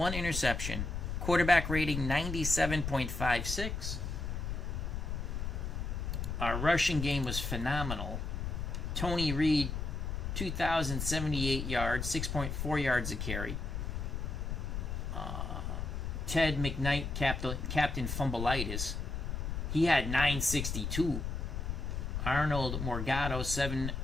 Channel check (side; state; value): left; noise; rumble, 3 dB below the sound